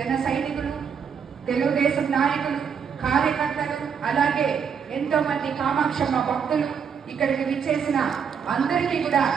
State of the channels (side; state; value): left; quieter; 6.9 dB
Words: సైనికులు, తెలుగుదేశం నాయకులు, కార్యకర్తలు, అలాగే ఎంతో మంది కామాక్షమ్మ భక్తులు ఇక్కడికి విచ్చేసిన అందరికీ కూడా